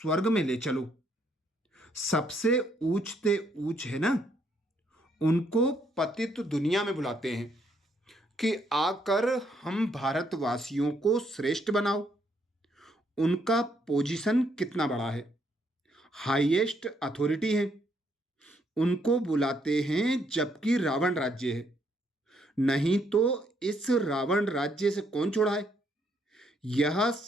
में ले चलो। सबसे ऊंचते ऊंच है ना, उनको पतित दुनिया में बुलाते हैं कि आकर हम भारतवासियों को श्रेष्ठ बनाओ। उनका पोजीशन कितना बड़ा है, हाईएस्ट अथॉरिटी है। उनको बुलाते हैं जबकि रावण राज्य है। नहीं तो इस रावण राज्य से कौन छुड़ाए? यह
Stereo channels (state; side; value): normal; both; correlation 0.72